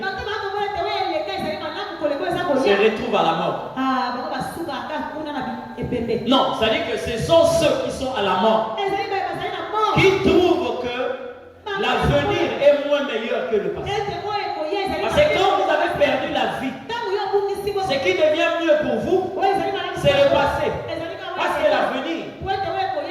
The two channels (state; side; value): identical; both; correlation 1.00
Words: se retrouvent à la mort. Non, c'est-à-dire que ce sont ceux qui sont à la mort qui trouvent que l'avenir est moins meilleur que le passé. Parce que quand vous avez perdu la vie, ce qui devient mieux pour vous, c'est le passé. Parce que l'avenir,